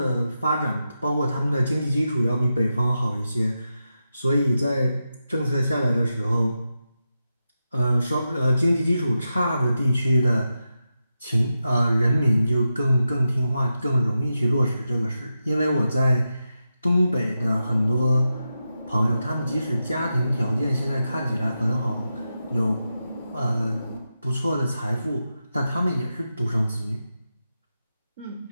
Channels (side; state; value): both; inverted; correlation -0.89